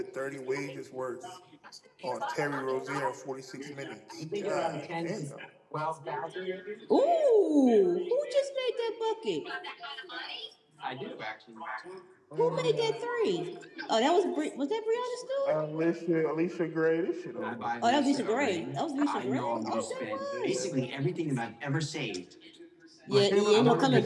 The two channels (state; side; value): identical; both; correlation 1.00